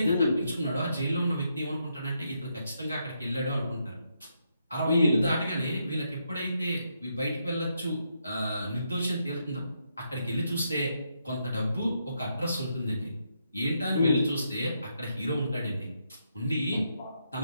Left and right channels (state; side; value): inverted; both; correlation -0.80